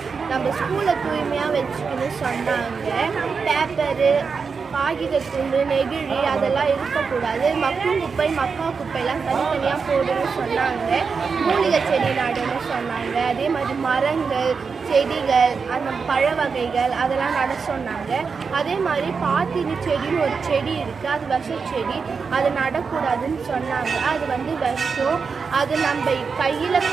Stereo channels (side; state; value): left; quieter; 5.3 dB